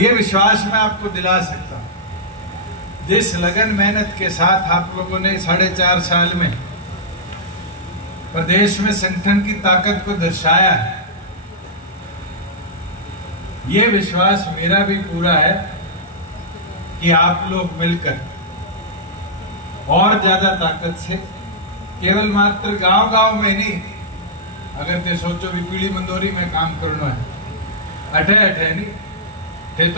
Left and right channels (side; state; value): both; normal; correlation -0.11